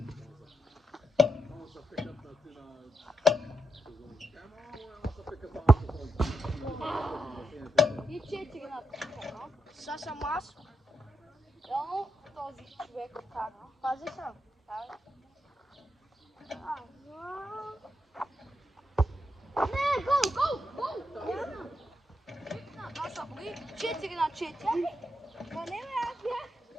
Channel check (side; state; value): both; normal; correlation 0.83